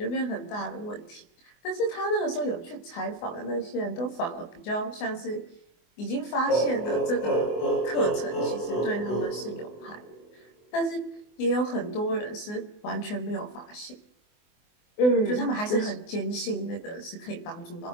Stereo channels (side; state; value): right; late; 24 ms